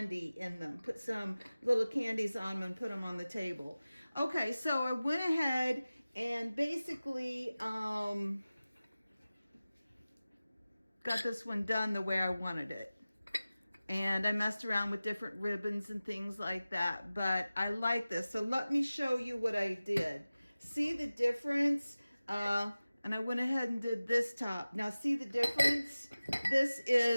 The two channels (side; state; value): both; inverted; correlation -0.97